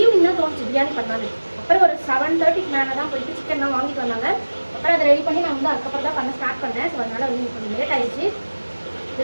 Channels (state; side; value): inverted; both; correlation -1.00